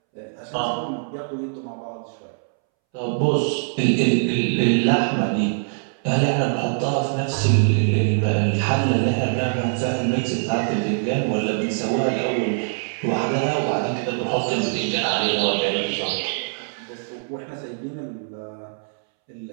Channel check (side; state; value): left; silent; 63 dB below the other